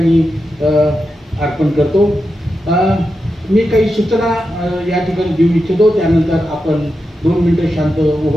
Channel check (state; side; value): normal; both; correlation 0.89